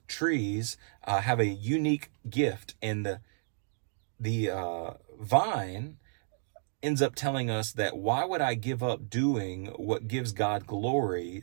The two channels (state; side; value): silent; left; digital silence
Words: trees have a unique gift, and the vine ends up telling us that why would I give up doing what gives God glory